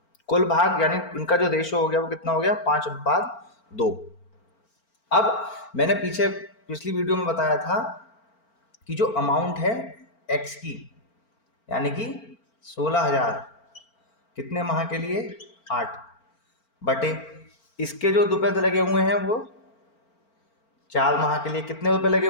कुल भाग यानी इनका जो रेशो हो गया वो कितना हो गया? 5/2। अब मैंने पिछली वीडियो में बताया था कि जो अमाउंट है एक्स की, यानी कि 16,000 कितने माह के लिए? 8 बटे इसके जो रुपए लगे हुए हैं वो 4 माह के लिए। कितने रुपए लगे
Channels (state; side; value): late; right; 4.4 ms